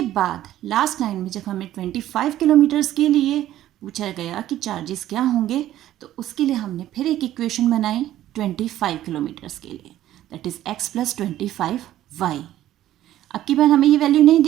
बाद लास्ट लाइन में जब हमें 25 किलोमीटर्स के लिए पूछा गया कि चार्जेस क्या होंगे तो उसके लिए हमने फिर एक इक्वेशन बनाई 25 किलोमीटर्स के लिए, दैट इज़ x + 25y। अब की बार हमें ये वैल्यू नहीं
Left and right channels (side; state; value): left; quieter; 13.2 dB